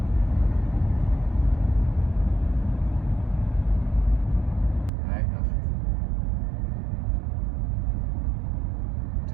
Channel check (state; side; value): drops out; left; at 4.9 s